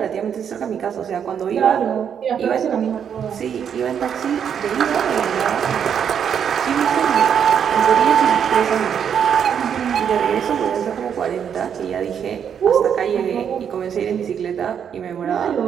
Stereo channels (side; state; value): left; quieter; 8.0 dB